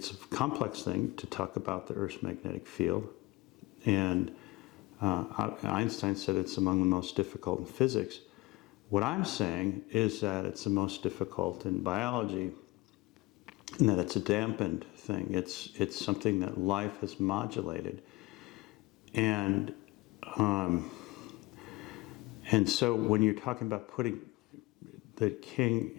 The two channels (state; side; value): quieter; right; 21.8 dB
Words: a complex thing to talk about the Earth's magnetic field, and Einstein said it's among the most difficult in physics. What I'm saying is that it's the most difficult in biology, and that it's a dampened thing. It's something that life has modulated, and so when you're talking about putting the king